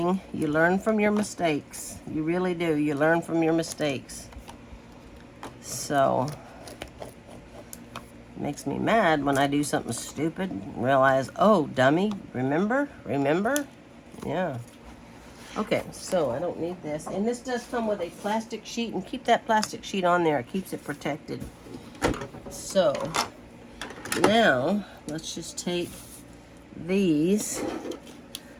You learn from your mistakes. You really do. You learn from your mistakes. So, it makes me mad when I do something stupid and realize, oh, dummy, remember? Remember? Yeah. Okay, so I don't need this. And this does come with a plastic sheet, and keep that plastic sheet on there. It keeps it protected. So, now, let's just take these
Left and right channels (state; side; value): identical; both; correlation 1.00